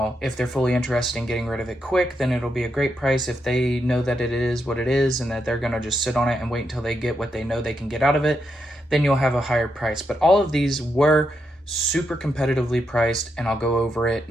if they're fully interested in getting rid of it quick, then it'll be a great price. If they know that it is what it is and that they're going to just sit on it and wait until they get what they know they can get out of it, then you'll have a higher price. But all of these were super competitively priced, and I'll go over it.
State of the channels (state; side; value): normal; both; correlation 0.82